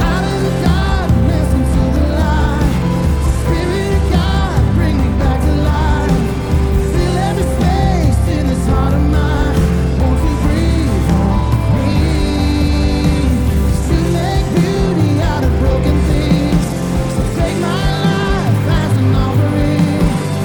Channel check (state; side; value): identical; both; correlation 1.00